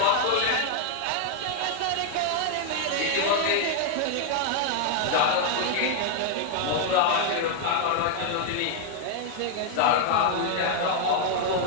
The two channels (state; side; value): different; both; correlation 0.00